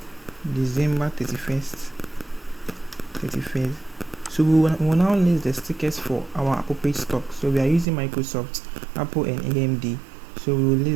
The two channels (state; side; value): drops out; left; at 7.9 s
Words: December 31st. So we will now list the stickers for our appropriate stock. So we are using Microsoft, Apple and AMD. So we will